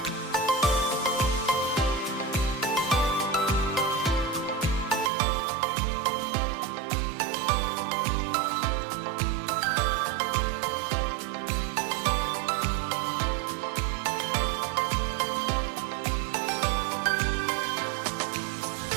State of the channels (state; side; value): drops out; left; at 5.1 s